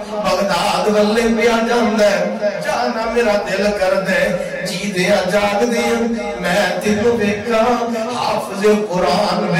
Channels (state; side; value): identical; both; correlation 1.00